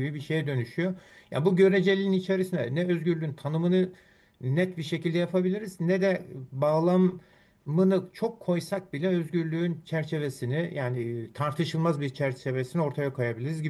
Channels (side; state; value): both; identical; correlation 1.00